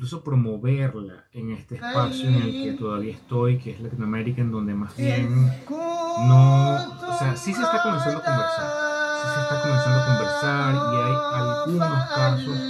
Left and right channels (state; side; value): identical; both; correlation 1.00